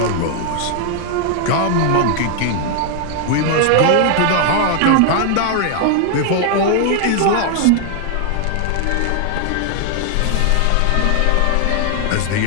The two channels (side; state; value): both; different; correlation 0.00